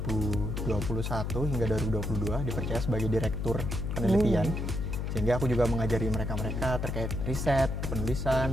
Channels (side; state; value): left; noise; hum, 2 dB below the sound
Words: hingga 2022 dipercaya sebagai direktur penelitian. Sehingga aku juga mengajari mereka-mereka terkait riset,